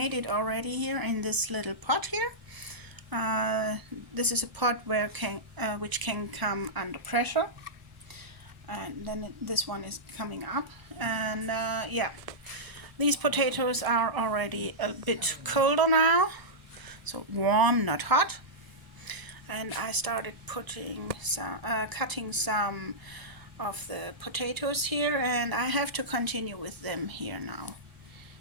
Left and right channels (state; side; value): late; left; 1.0 ms